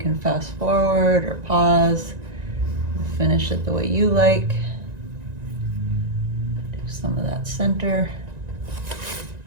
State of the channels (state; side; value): late; left; 1.9 ms